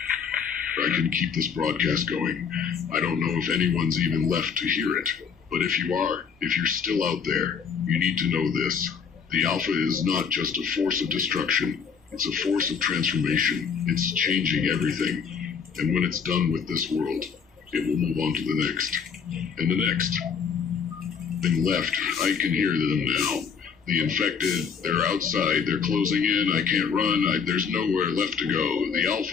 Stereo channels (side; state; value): right; quieter; 6.4 dB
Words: I can keep this broadcast going. I don't know if anyone's even left to hear it. But if you are, if you're still out there, you need to know this. The Alpha is not just a force of destruction. It's a force of transformation. It's changing everything. And when it's done with this world, it will move on to the next. And the next. Thing left. I can hear them now. The infected, they're outside. They're closing in. I can't run. There's nowhere left to go. The